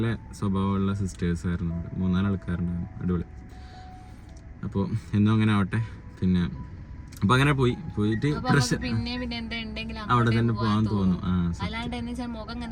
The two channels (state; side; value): identical; both; correlation 1.00